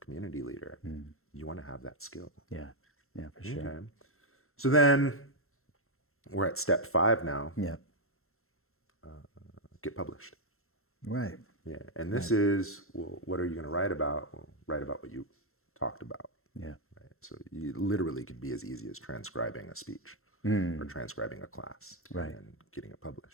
community leader, you want to have that skill. Yeah, for sure. Okay. So then we're at step 5 now. Get published. Right. Yeah. And this is, well, what are you going to write about? Well, write about what you talked about. Right. So you literally could be as easy as transcribing a speech or transcribing a class and getting it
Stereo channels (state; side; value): late; right; 0.62 ms